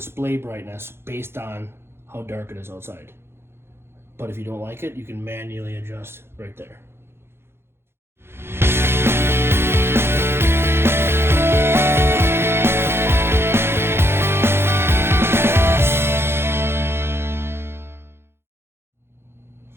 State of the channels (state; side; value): late; left; 0.12 ms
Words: brightness based on how dark it is outside. But if you don't like it, you can manually adjust right there.